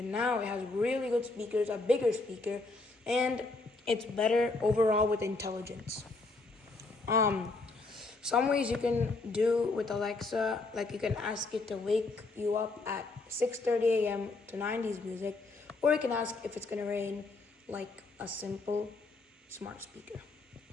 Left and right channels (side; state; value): right; quieter; 3.4 dB